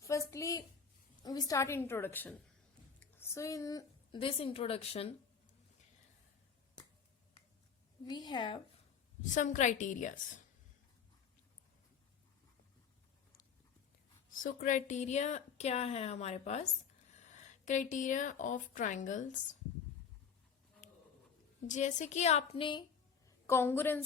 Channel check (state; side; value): quieter; right; 6.6 dB